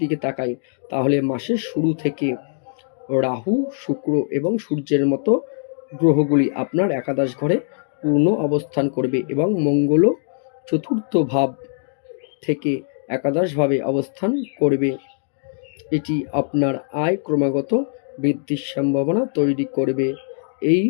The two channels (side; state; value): right; silent; digital silence